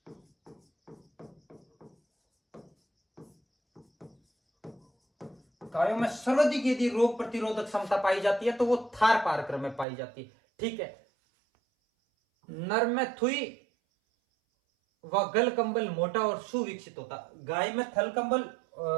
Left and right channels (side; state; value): left; drops out; at 9.9 s